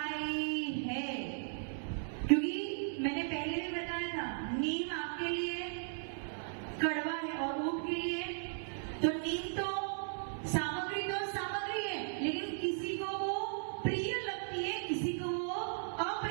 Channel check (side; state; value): left; silent; digital silence